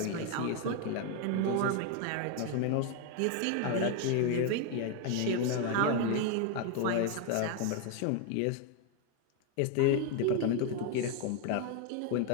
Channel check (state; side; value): different; both; correlation 0.01